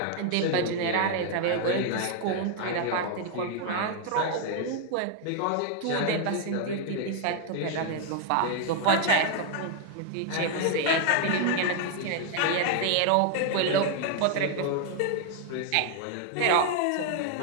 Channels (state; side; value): different; both; correlation 0.00